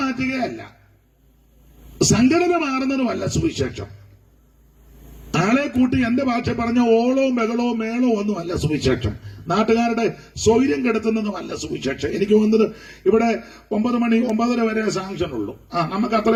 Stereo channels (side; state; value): both; identical; correlation 1.00